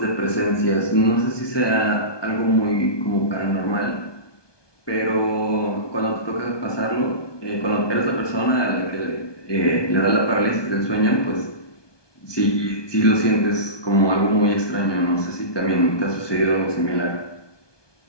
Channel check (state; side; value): late; right; 1.2 ms